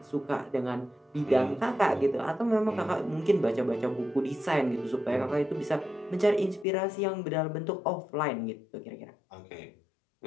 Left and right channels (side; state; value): right; drops out; at 6.7 s